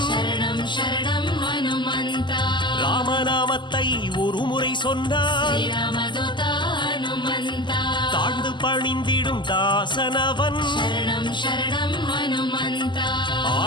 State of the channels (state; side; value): late; right; 0.22 ms